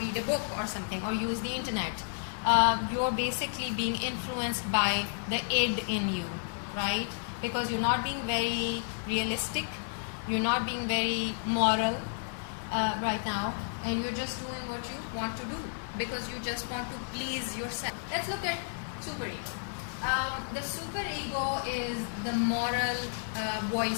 a book or something, or use the internet, you're basically being influenced by the id in you, right? Because you're not being very realistic, you're not being very moral right now, and you're just doing what you want to do because you just want to please yourself. Let's look at superego. The superego is the moral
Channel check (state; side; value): silent; right; 57 dB below the other